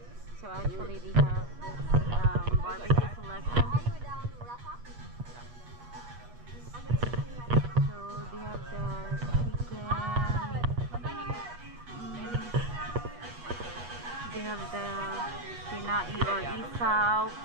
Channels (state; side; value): late; left; 8.3 ms